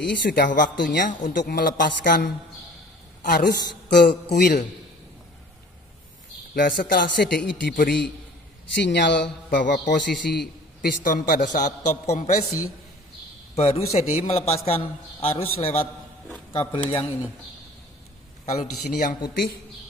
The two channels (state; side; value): normal; both; correlation 0.48